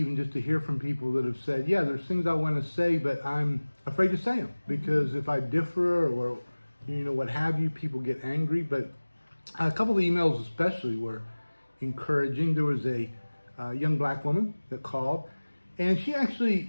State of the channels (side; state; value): both; inverted; correlation -1.00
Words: just to hear from people that have said, yeah, there's things I want to say, but I'm afraid to say them because if I differ or what have you, people get angry. But a couple of emails especially were encouraging. There was a young black woman that called, and she